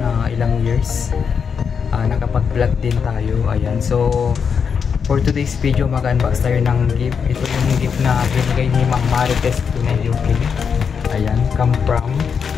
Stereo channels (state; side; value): quieter; right; 6.5 dB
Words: ilang years, nakapag-vlog din tayo. Ayan, so for today's video, mag-unbox tayo ng gift. Ito yung gift na binigay ni Ma'am Marites, Pinay, UK. Ayan, come from,